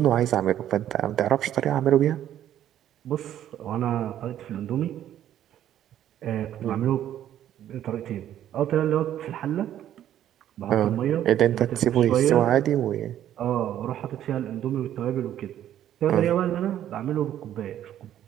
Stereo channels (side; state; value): left; quieter; 11.3 dB